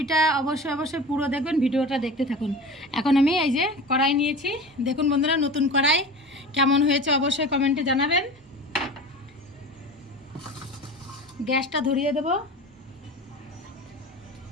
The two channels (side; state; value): both; normal; correlation 0.34